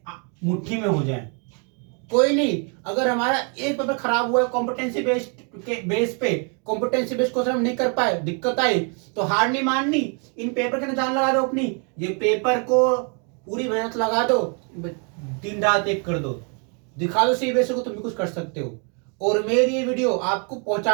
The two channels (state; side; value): quieter; left; 38.3 dB